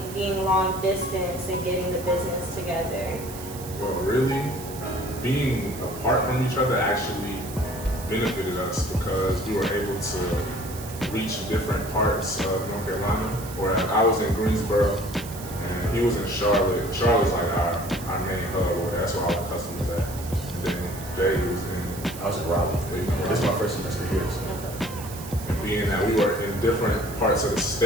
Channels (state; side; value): noise; right; hiss, 14 dB below the sound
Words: being long distance and getting the business together? Well, really, being apart from each other actually benefited us because we were able to reach different parts of North Carolina. Where I was in Greensboro and he was in Charlotte. Charlotte's like our main hub, or that's where all the customers at. And then Jay was I was in Raleigh. This is my first semester here. So. And being that we were in different parts of the